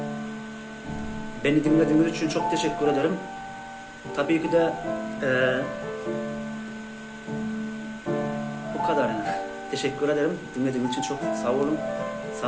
Beni dinlediğiniz için çok teşekkür ederim. Tabii ki de bu kadar yani. Teşekkür ederim. Dinlediğiniz için çok sağ olun.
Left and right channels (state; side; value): identical; both; correlation 1.00